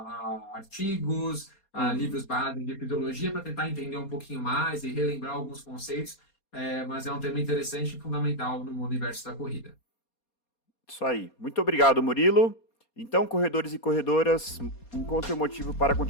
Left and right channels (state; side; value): late; right; 4.2 ms